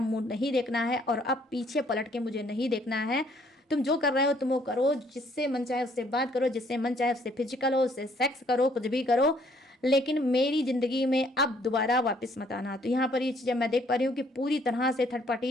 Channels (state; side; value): normal; both; correlation 0.64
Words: मुंह नहीं देखना है, और अब पीछे पलट के मुझे नहीं देखना है। तुम जो कर रहे हो तुम वो करो, जिससे मन चाहे उससे बात करो, जिससे मन चाहे उससे फिजिकल हो, उससे सेक्स करो, कुछ भी करो, लेकिन मेरी जिंदगी में अब दोबारा वापस मत आना। तो यहाँ पर ये चीज़ें मैं देख पा रही हूँ कि पूरी तरह से थर्ड